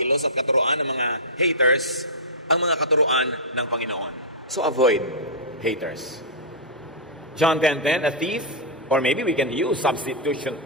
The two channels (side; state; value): both; normal; correlation -0.12